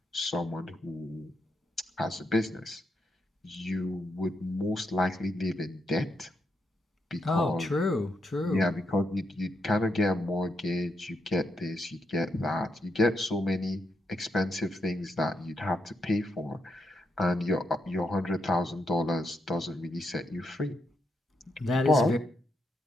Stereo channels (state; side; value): normal; both; correlation 0.81